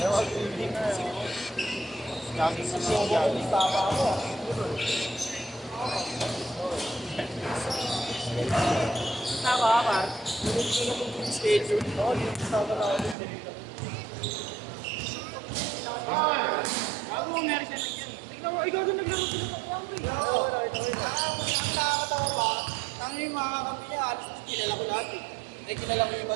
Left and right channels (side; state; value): left; drops out; at 13.2 s